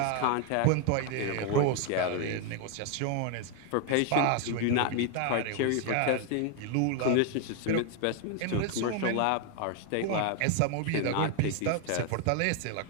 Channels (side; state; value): both; different; correlation 0.01